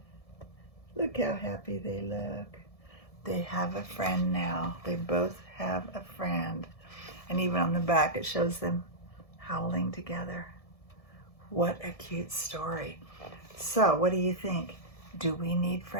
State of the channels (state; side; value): late; right; 1.7 ms